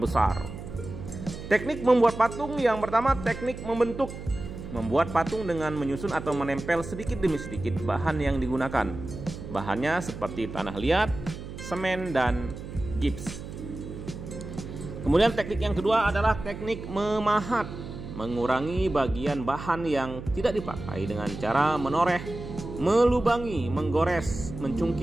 Teknik membuat patung yang pertama teknik membentuk. Membuat patung dengan menyusun atau menempel sedikit demi sedikit bahan yang digunakan. Bahannya seperti tanah liat, semen, dan gips. Kemudian teknik yang kedua adalah teknik memahat. Mengurangi bagian bahan yang tidak dipakai dengan cara menoreh, melubangi, menggores,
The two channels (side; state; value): right; noise; hum, 10 dB below the sound